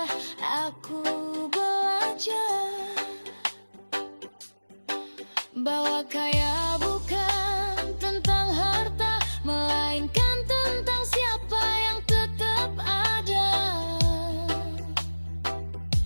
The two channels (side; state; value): both; inverted; correlation -1.00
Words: aku belajar bahwa kaya bukan tentang harta, melainkan tentang siapa yang tetap ada.